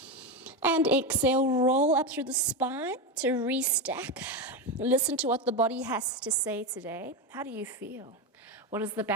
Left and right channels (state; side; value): normal; both; correlation 0.14